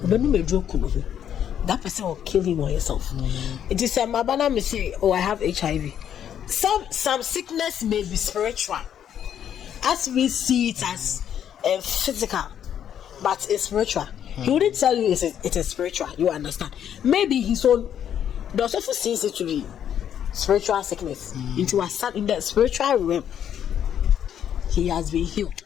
that person will kill him or herself. It is a mabana may say, I have HIV. Some sickness may be spiritual, as we see it as physical, but it's spiritual. He wouldn't tell you it is spiritual. You understand? Maybe his own. The also sees it to be spiritual sickness. Into a son in the spiritual realm, he has been healed.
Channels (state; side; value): quieter; right; 9.5 dB